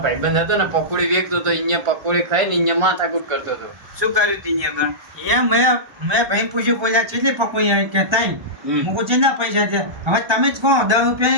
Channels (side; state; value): left; late; 1.3 ms